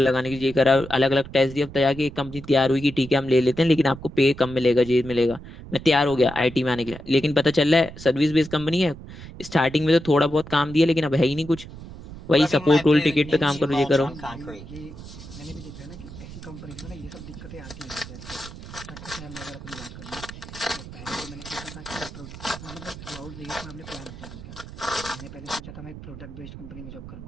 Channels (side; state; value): right; noise; rumble, 14 dB below the sound